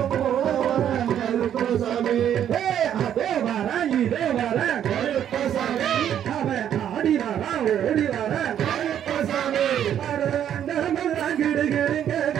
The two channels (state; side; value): quieter; left; 9.9 dB